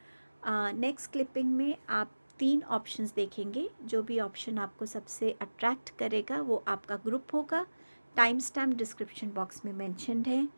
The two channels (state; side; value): inverted; both; correlation -1.00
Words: नेक्स्ट क्लिपिंग में आप 3 ऑप्शंस देखेंगे। जो भी ऑप्शन आपको सबसे अट्रैक्ट करेगा वो आपका ग्रुप होगा। टाइम स्टैम्प डिस्क्रिप्शन बॉक्स में मेंशन्ड है।